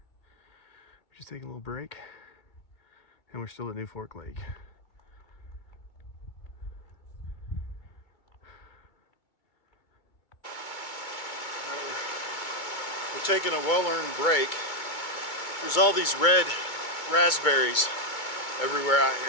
just taking a little break, and we're still at New Fork Lake. We're taking a well-earned break. There's all these red raspberries everywhere out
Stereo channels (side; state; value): right; late; 2.3 ms